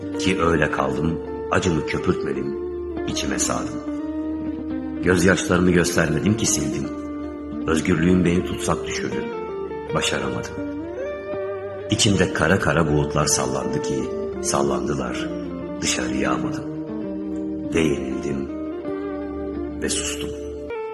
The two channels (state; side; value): identical; both; correlation 1.00